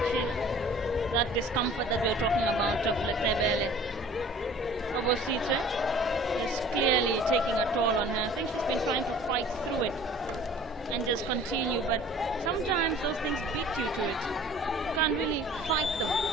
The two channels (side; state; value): both; normal; correlation 0.48